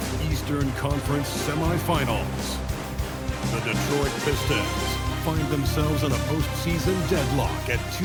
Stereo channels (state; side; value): identical; both; correlation 1.00